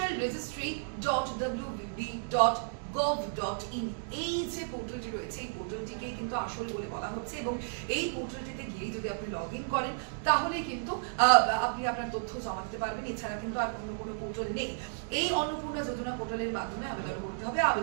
এই যে পোর্টালটি রয়েছে, এই পোর্টালটিকেই কিন্তু আসল বলে বলা হচ্ছে। এবং এই পোর্টালটিতে গিয়ে যদি আপনি লগ ইন করেন তাহলে কিন্তু আপনি আপনার তথ্য জমা দিতে পারবেন। এছাড়া কিন্তু আর অন্য কোনো পোর্টাল নেই। এই অন্নপূর্ণা যোজনা পোর্টালের মাধ্যমে আবেদন করতে হবে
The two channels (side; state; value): left; silent; digital silence